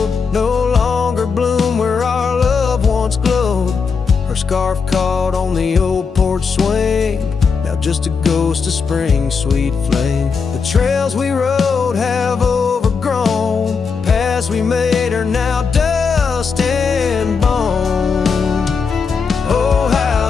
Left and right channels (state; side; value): quieter; right; 5.4 dB